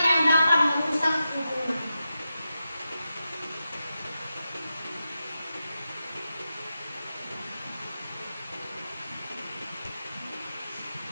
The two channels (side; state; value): both; inverted; correlation -0.90